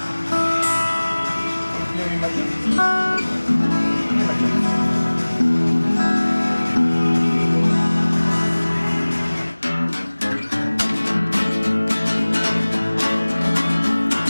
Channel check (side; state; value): both; inverted; correlation -1.00